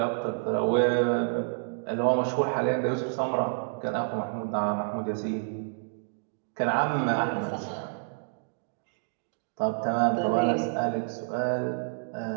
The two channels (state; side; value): silent; left; digital silence